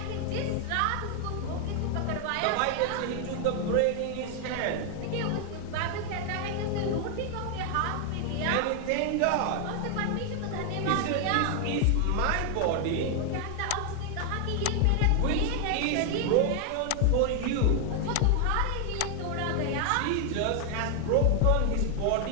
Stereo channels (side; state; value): both; different; correlation 0.00